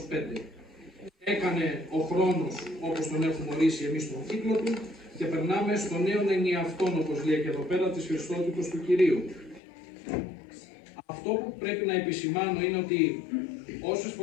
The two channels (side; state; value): right; drops out; at 9.6 s